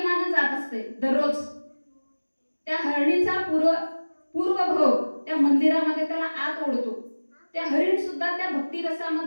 जात असते दररोज. त्या हरणीचा पूर्वभाव त्या मंदिरामध्ये त्याला आत ओढतो. त्या हरिण सुद्धा त्या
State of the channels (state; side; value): inverted; both; correlation -1.00